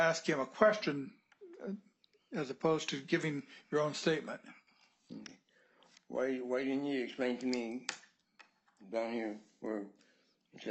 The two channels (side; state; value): both; identical; correlation 1.00